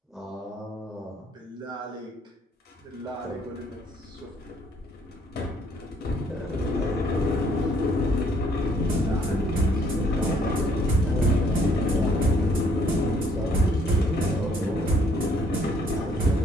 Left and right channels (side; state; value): both; normal; correlation 0.65